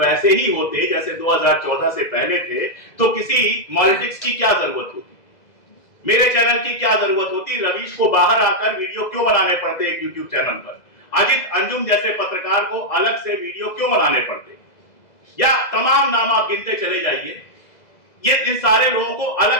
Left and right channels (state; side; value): late; right; 2.0 ms